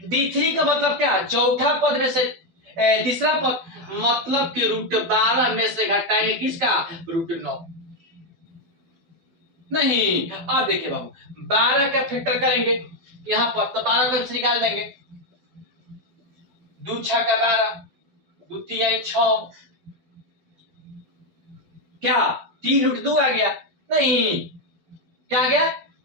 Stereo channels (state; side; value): late; left; 12 ms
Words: D3 का मतलब क्या, चौथा पद में से तीसरा पद, मतलब कि √12 में से घटाएंगे किसका, √9, नहीं। अब देखिए बाबू 12 का फैक्टर करेंगे यहाँ पर, तो 12 का निकाल देंगे, 2 6 का 12, 2 3 6, क्या 3 √2 आ गया, नहीं। क्या आ गया,